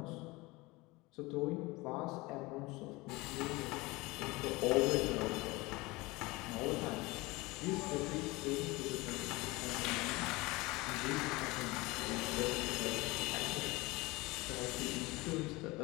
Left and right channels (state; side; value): quieter; right; 22.7 dB